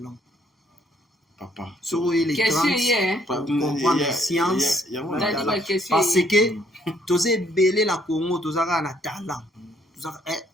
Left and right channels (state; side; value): normal; both; correlation 0.67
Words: Papa. Sur les 30 pour comprendre science parce que tosé belé la Congo tozaka na talent.